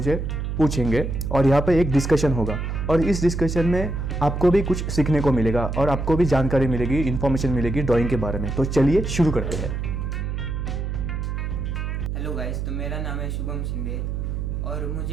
पूछेंगे और यहाँ पर एक डिस्कशन होगा। और इस डिस्कशन में आपको भी कुछ सीखने को मिलेगा और आपको भी जानकारी मिलेगी, इन्फॉर्मेशन मिलेगी ड्राइंग के बारे में। तो चलिए शुरू करते हैं। हेलो गाइस, तो मेरा नाम है शुभम शिंदे और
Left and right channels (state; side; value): noise; right; hum, 3 dB below the sound